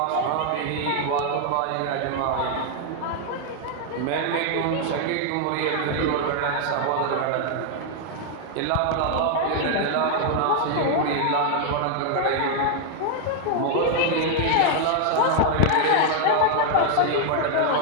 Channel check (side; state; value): both; different; correlation 0.00